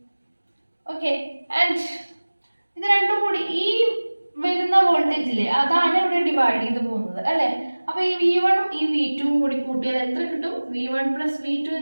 ഓക്കെ. ആൻഡ് ഇത് രണ്ടും കൂടി ഈ വരുന്ന വോൾട്ടേജ് ഇല്ലേ, അതാണ് ഇവിടെ ഡിവൈഡ് ചെയ്ത് പോകുന്നത് അല്ലേ? അപ്പൊ ഈ V1ഉം ഈ V2ഉം കൂടി കൂട്ടിയാൽ എത്ര കിട്ടും? V1 + V2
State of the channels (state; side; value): inverted; both; correlation -1.00